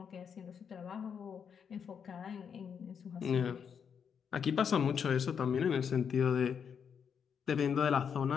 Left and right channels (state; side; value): quieter; right; 7.1 dB